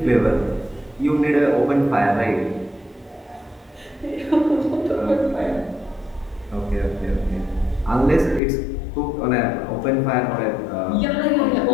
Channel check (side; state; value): right; drops out; at 8.4 s